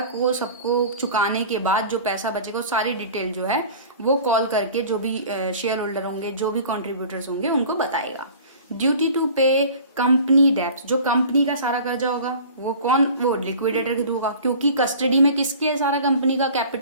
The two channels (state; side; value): inverted; both; correlation -0.43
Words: को सबको चुकाने के बाद जो पैसा बचेगा सारी डिटेल जो है वो कॉल करके जो भी शेयर होल्डर होंगे, जो भी कॉन्ट्रीब्यूटर्स होंगे उनको बताएगा। ड्यूटी टू पे कंपनी डेप्ट। जो कंपनी का सारा कर्जा होगा वो लिक्विडेटर के थ्रू होगा, क्योंकि कस्टडी में किसके है, सारा कंपनी का